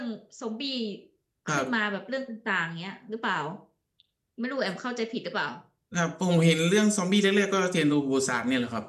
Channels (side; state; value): both; identical; correlation 1.00